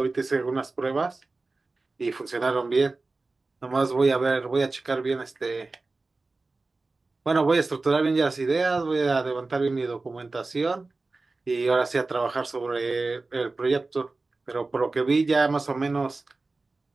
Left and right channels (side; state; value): left; quieter; 3.5 dB